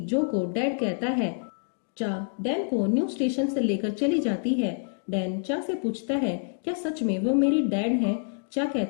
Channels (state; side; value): silent; right; digital silence